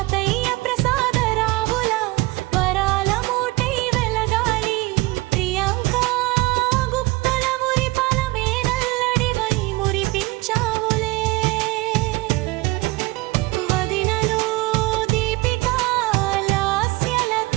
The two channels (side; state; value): left; quieter; 21.8 dB